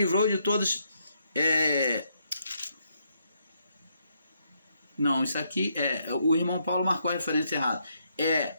de todos. Não, isso aqui o irmão Paulo marcou a referência errada.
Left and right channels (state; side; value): inverted; both; correlation -0.76